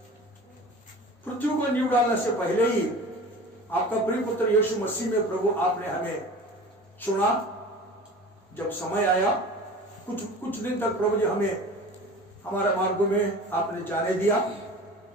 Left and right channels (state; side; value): normal; both; correlation 0.38